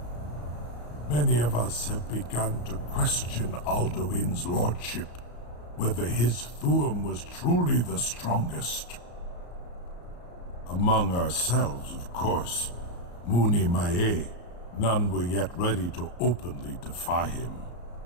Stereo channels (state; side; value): late; right; 34 ms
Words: Many of us have begun to question Alduin's lordship, whether his Thuum was truly the strongest. Among ourselves, of course, Muni Mae, none were yet ready to openly defy him.